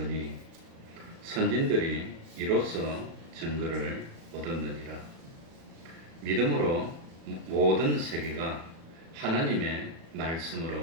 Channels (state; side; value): late; left; 36 ms